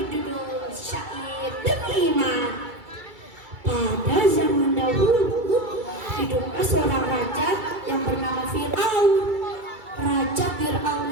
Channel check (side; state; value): left; late; 2.3 ms